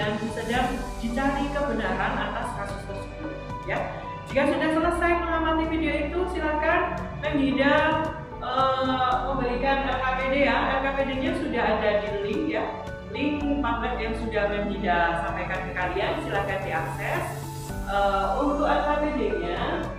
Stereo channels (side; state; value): both; identical; correlation 1.00